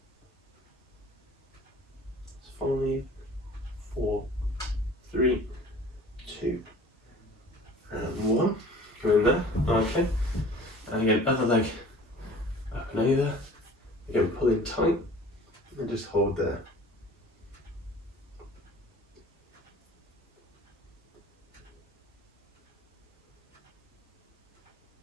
It's 5, 4, 3, 2, and 1. Go in there. Okay. And again, other leg up and over. Again, pull in tight and just hold there.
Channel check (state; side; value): normal; both; correlation 0.47